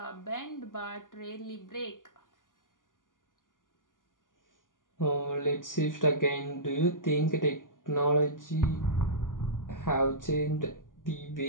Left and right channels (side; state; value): right; late; 0.89 ms